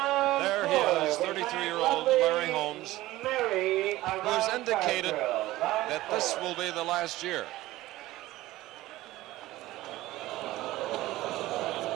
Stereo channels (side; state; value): left; quieter; 17.0 dB